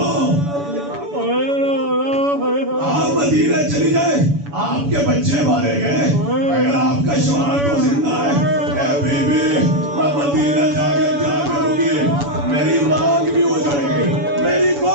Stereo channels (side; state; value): left; late; 7.0 ms